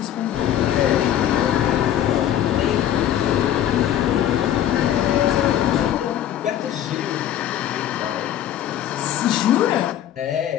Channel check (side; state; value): right; quieter; 11.2 dB